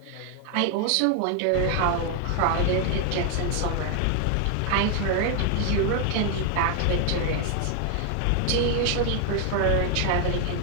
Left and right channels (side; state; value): both; different; correlation 0.00